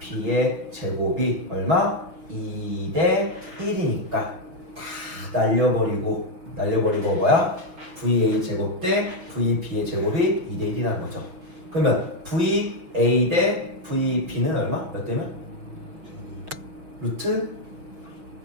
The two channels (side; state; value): left; late; 6.2 ms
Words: 제곱이 얼마? 2대 1이니까 다 날려버리고 뭐야? VA 제곱 대 VB의 제곱이 2대 1이라는 거죠. 그러면 VA 대 VB는 얼마? 몇 대면? 루트